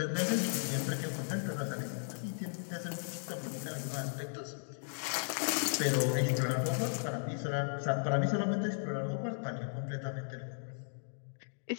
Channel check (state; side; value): silent; right; digital silence